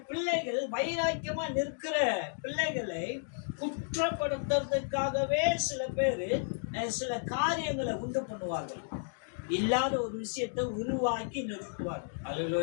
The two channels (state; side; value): silent; right; digital silence